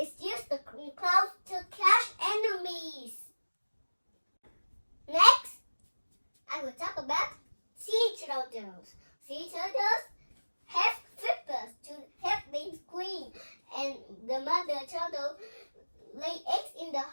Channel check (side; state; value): both; inverted; correlation -1.00